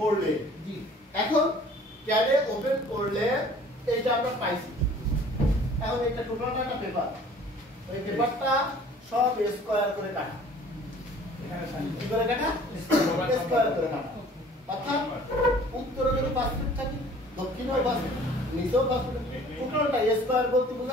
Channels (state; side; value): normal; both; correlation 0.51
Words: জি এখন ক্যাডে ওপেন করলে এইটা আমরা পাইছি। এখন এটা টোটালটা একটা পেপার, ওই পেপারটা সব স্কয়ার করে কাটা। কি করে কাটা? স্কয়ার করে কাটা। অর্থাৎ উত্তরে যদি 5 ফিট থাকে, দক্ষিণেও 5 ফিট, নিচেও 5 ফিট, টোটালটা স্কয়ার বলতে